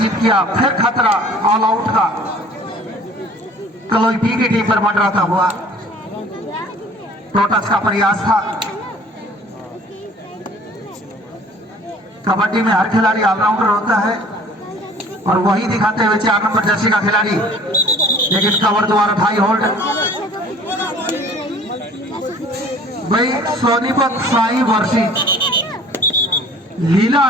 किया। फिर खतरा ऑल आउट का कलोई बी की टीम पर मंडराता हुआ टोटस का प्रयास था। कबड्डी में हर खिलाड़ी ऑलराउंडर होता है और वही दिखाते हुए 4 नंबर जर्सी का खिलाड़ी, लेकिन कवर द्वारा भाई होल्ड। भाई सोनीपत साई वर्सेस लीला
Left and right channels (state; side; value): normal; both; correlation 0.50